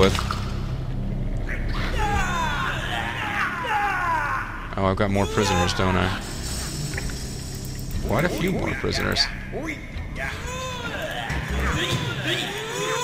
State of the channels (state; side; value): identical; both; correlation 1.00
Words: Oh, I've got more prisoners, don't I? Quite a few more prisoners.